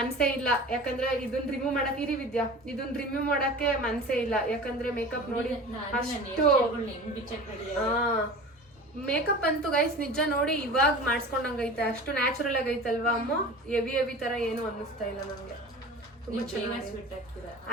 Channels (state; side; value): normal; both; correlation 0.37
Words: ಇಲ್ಲ, ಯಾಕಂದ್ರೆ ಇದನ್ನ ರಿಮೂವ್ ಮಾಡಕ್ ಇರಿ ವಿದ್ಯಾ, ಇದನ್ನ ರಿಮೂವ್ ಮಾಡಕ್ಕೆ ಮನ್ಸೇ ಇಲ್ಲ. ಯಾಕಂದ್ರೆ ಮೇಕಪ್ ನೋಡಿ ಅಷ್ಟು ಮೇಕಪ್ ಅಂತೂ ಗೈಸ್ ನಿಜ ನೋಡಿ ಇವಾಗ ಮಾಡಿಸ್ಕೊಂಡಂಗೈತೆ. ಅಷ್ಟು ನ್ಯಾಚುರಲ್ ಆಗೈತಲ್ವಾ ಅಮ್ಮ. ಹೆವಿ ತರ ಏನು ಅನ್ನಿಸ್ತಾ ಇಲ್ಲ ನಂಗೆ.